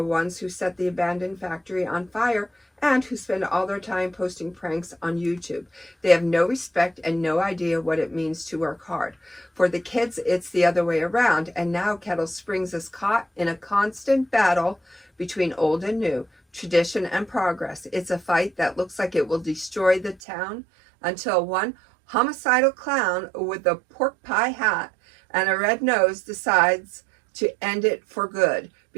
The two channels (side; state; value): left; drops out; at 20.2 s